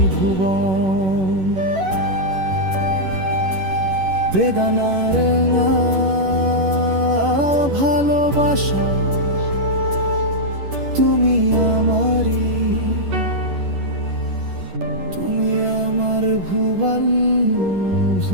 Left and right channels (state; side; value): late; left; 11 ms